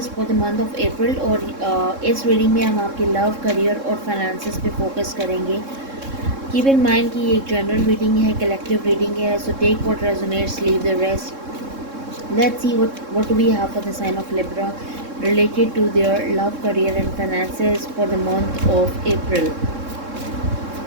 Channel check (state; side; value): late; left; 3.7 ms